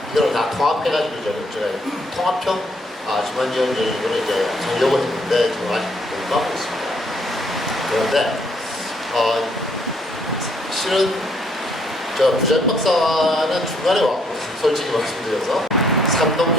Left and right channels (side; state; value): both; normal; correlation 0.68